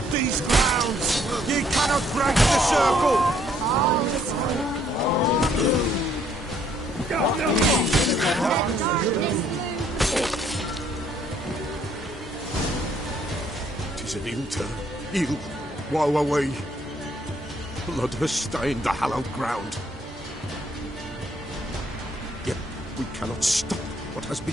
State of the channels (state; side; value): normal; both; correlation 0.66